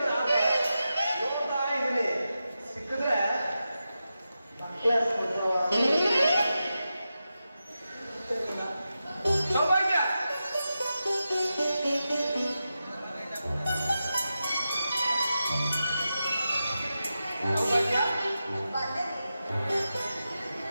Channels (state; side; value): inverted; both; correlation -0.91